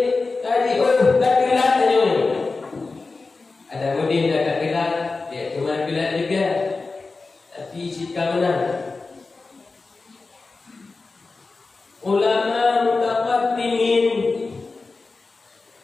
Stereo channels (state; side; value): quieter; right; 3.9 dB